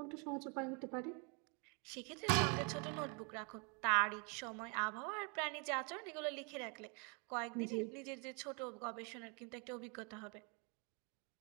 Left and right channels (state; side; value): quieter; left; 33.9 dB